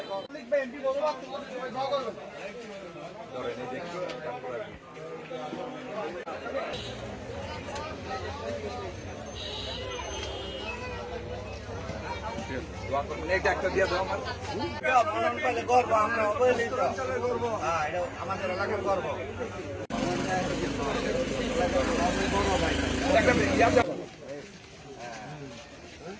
ধরেন এই দেখি দোয়া করবেন। এইটা একটা দিয়ে দাও আমার গর্ব, আমরা অবহেলিত গর্ব, এটা আমাদের এলাকার গর্ব।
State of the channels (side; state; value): both; identical; correlation 1.00